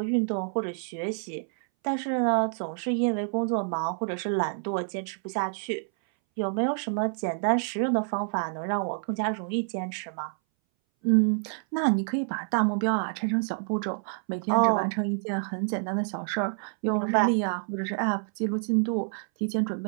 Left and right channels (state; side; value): silent; left; 59 dB below the other